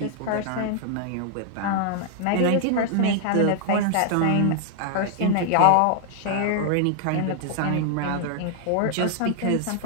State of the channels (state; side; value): different; both; correlation 0.00